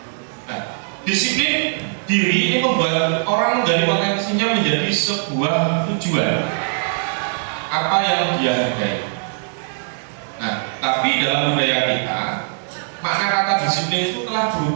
Nah, disiplin diri ini membuat orang dari potensinya menjadi sebuah tujuan apa yang dia hargai. Nah, tapi dalam budaya kita, makna kata disiplin itu telah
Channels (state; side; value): silent; left; 65 dB below the other